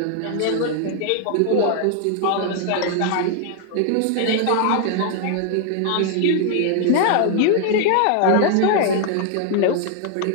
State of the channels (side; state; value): both; different; correlation 0.00